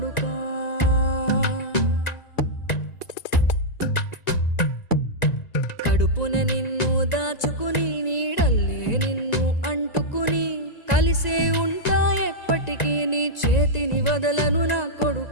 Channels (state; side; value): late; right; 1.9 ms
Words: కడుపున నిన్ను దాచుకుని నీడల్లే నిన్ను అంటుకుని కలిసే ఉంటా ఎప్పటికీ నీ చేతిని వదలను నా